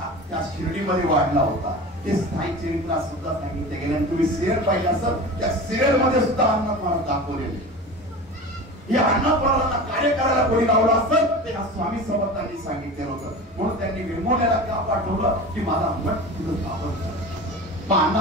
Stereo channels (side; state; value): both; normal; correlation 0.33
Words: त्या शिर्डीमध्ये वाढला होता. ते साई चरित्रात सुद्धा सांगितले गेले. तुम्ही सिरियल पाहिजे असेल, त्या सिरियल मध्ये सुद्धा अण्णानाथ महाराज दाखवलेले. हे अण्णानाथ महाराजांना कार्य करायला कोणी लावलं असेल ते स्वामी समर्थांनी सांगितलेलं होतं. म्हणून त्यांनी वेंगुर्ल्याला का पाठवलं की माझा मठ तिथं स्थापन करा. मग